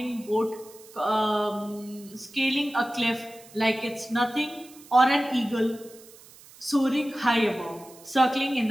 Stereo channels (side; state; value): right; noise; hiss, 22 dB below the sound